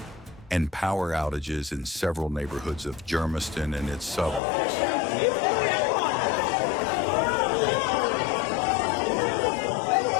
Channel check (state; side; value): drops out; right; at 4.4 s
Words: and power outages in several neighborhoods of Germiston and its suburbs.